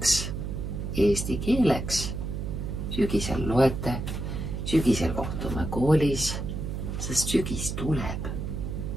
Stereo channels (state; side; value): noise; right; hum, 4 dB below the sound